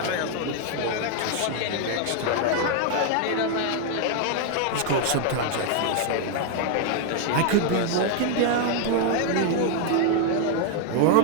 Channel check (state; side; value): different; both; correlation 0.00